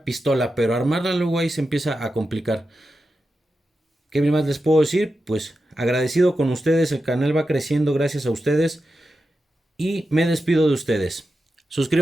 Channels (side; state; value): both; normal; correlation 0.90